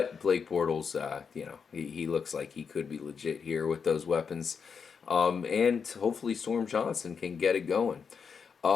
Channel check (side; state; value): right; quieter; 6.1 dB